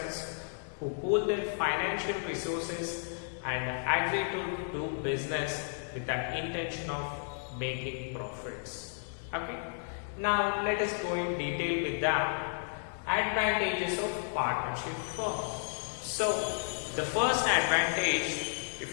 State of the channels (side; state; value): right; silent; digital silence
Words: who pool their financial resources and agree to do business with the intention of making profits. Okay, now let us go in detail with the advantages of partnership firm. So the first advantage,